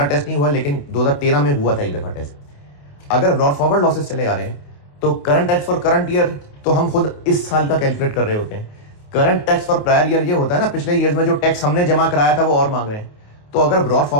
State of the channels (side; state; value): right; late; 28 ms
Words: टेस्ट नहीं हुआ, लेकिन 2013 में हुआ था एक दफा टेस्ट। अगर ब्रॉड फॉरवर्ड लॉसेस चले आ रहे हैं तो current tax for current year तो हम खुद इस साल का कैलकुलेट कर रहे होते हैं। Current tax for prior year ये होता है ना, पिछले ईयर्स में जो टैक्स हमने जमा कराया था वो और मांग रहे हैं। तो अगर ब्रॉड